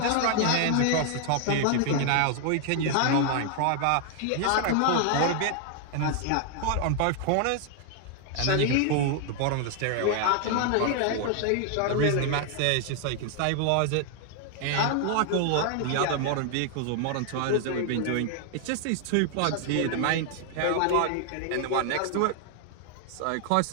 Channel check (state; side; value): different; both; correlation 0.00